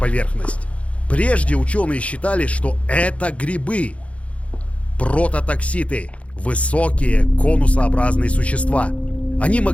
Прежде ученые считали, что это грибы. Прототокситы. Высокие конусообразные существа. Они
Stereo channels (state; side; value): late; right; 0.064 ms